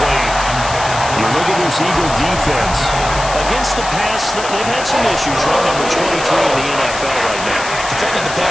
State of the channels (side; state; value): left; noise; hiss, 9 dB below the sound